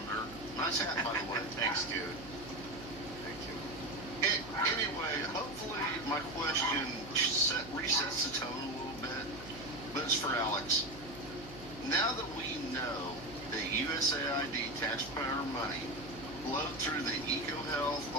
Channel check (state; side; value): noise; right; hum, 15 dB below the sound